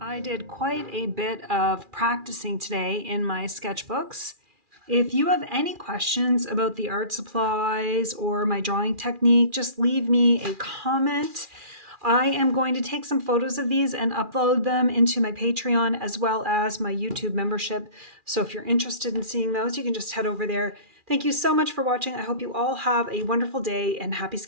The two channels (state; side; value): late; left; 2.4 ms